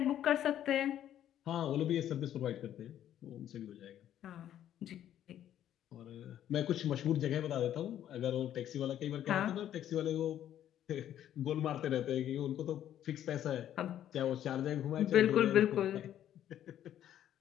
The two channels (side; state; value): right; quieter; 11.1 dB